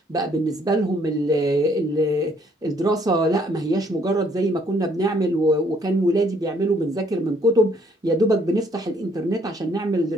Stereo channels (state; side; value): normal; both; correlation 0.65